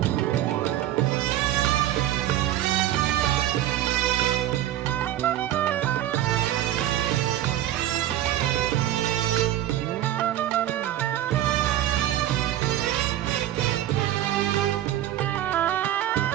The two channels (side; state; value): left; quieter; 12.8 dB